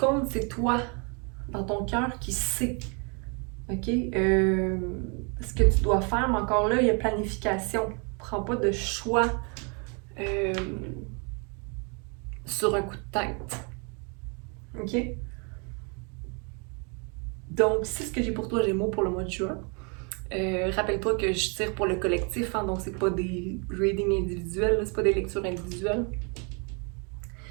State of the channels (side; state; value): left; quieter; 35.0 dB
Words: c'est toi, dans ton cœur, qui sais. OK? Ce que tu dois faire, mais encore là, il y a planification. Prends pas de choix sur un coup de tête. OK? Donc, c'est ce que j'ai pour toi, Gémeaux, pour le mois de juin. Rappelle-toi que je tire pour le collectif, hein, donc c'est pas des readings individuels, c'est pas des lectures individuelles.